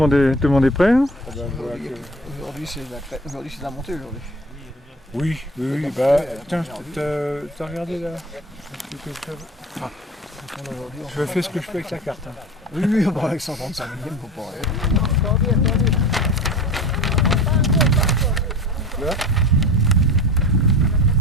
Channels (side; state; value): both; normal; correlation 0.36